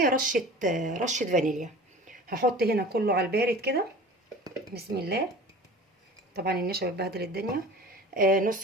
رشه فانيليا. هحط هنا كله على البارد كده، بسم الله. طبعا النشا بتبهدل الدنيا.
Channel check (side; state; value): both; normal; correlation 0.40